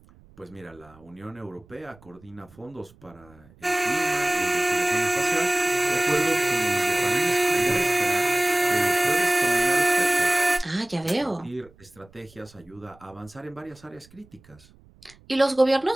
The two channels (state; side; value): noise; right; rumble, 27 dB below the sound